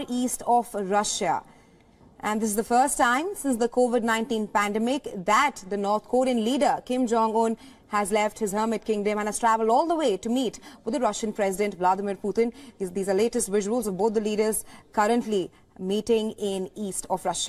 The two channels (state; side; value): identical; both; correlation 1.00